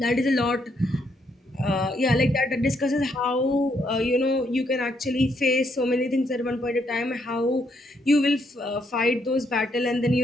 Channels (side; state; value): both; normal; correlation 0.74